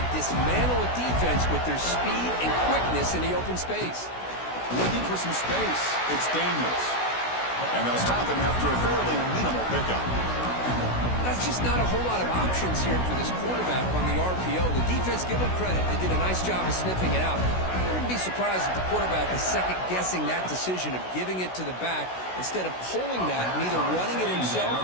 dismantle a defense with their speed and quickness in the open space. Looking for some space. It's Daniels. And they'll stop him after a fairly minimal pickup. That's just not a whole lot of options here for this quarterback on the RPO. The defense, give them credit. They did a nice job of sniffing it out. I wouldn't be surprised if the quarterback is second-guessing that decision of giving it to the back instead of pulling that and either running it himself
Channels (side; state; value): right; late; 16 ms